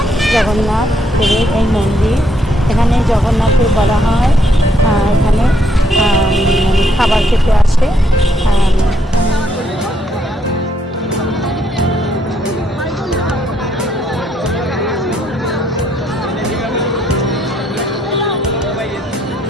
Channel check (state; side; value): normal; both; correlation 0.72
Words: জগন্নাথ দেবের এই মন্দির। এখানে জগন্নাথের বলা হয় এখানে খাবার খেতে আসে।